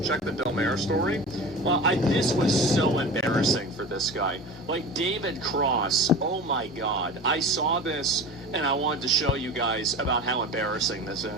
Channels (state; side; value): normal; both; correlation 0.34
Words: Check the Del Mar story. Well, this was so embarrassing for this guy. Like, David Cross, oh my god. I saw this, and I wanted to show you guys about how embarrassing this